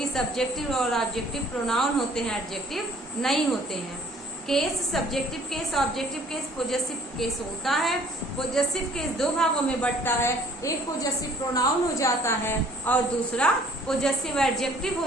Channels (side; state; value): both; normal; correlation 0.56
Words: सब्जेक्टिव और ऑब्जेक्टिव प्रोनाउन होते हैं, एडजेक्टिव नहीं होते हैं। Case subjective case, objective case, possessive case होता है। पोजेसिव केस दो भागों में बंटता है, एक पोजेसिव प्रोनाउन हो जाता है और दूसरा पोजेसिव एडजेक्टिव हो